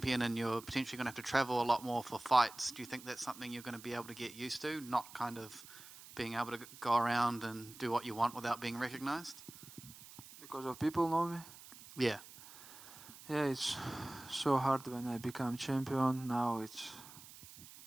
and you're potentially going to have to travel a lot more for fights, do you think that's something you're going to be able to get used to, not kind of being able to go around and do what you want without being recognized? Because of people know me. Yeah. Yeah, it's so hard when I become champion. Now it's,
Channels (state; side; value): noise; right; hiss, 17 dB below the sound